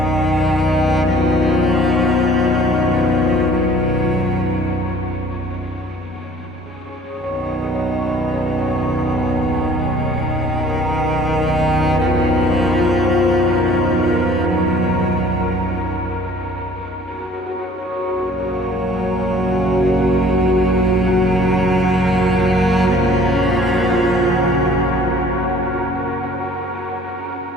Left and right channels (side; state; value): both; normal; correlation 0.53